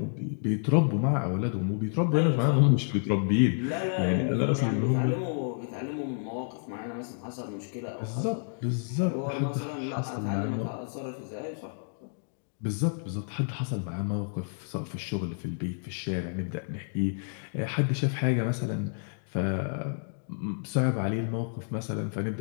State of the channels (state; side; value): silent; right; digital silence